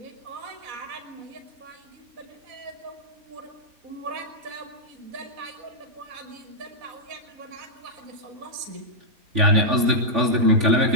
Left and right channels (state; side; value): late; left; 3.5 ms